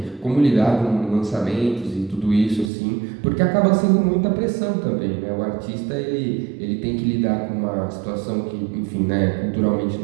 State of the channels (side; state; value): left; drops out; at 2.7 s